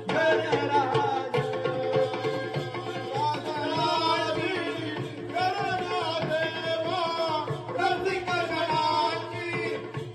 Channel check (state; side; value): identical; both; correlation 1.00